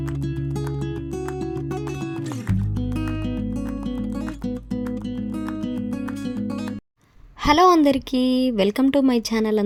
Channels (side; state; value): both; identical; correlation 1.00